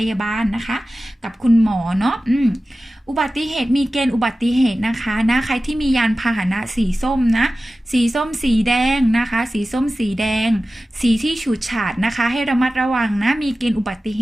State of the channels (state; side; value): normal; both; correlation 0.95